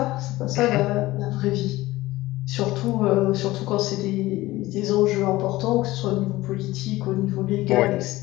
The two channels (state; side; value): quieter; right; 18.1 dB